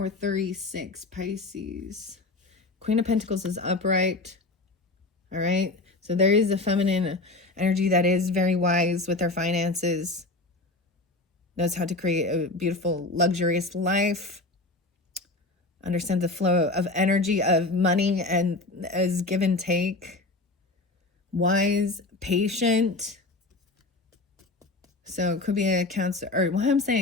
36, Pisces. Queen of Pentacles is upright. All right. So there is a feminine energy that is very wise with their finances. Knows how to create a beautiful, luxurious life. Understands the flow of energy, of money, and as give and take. Wise, patient. So it could be a Cancer, or well, I'm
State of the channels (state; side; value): quieter; right; 3.1 dB